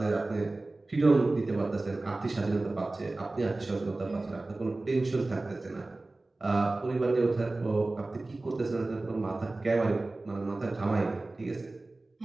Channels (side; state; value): left; quieter; 3.0 dB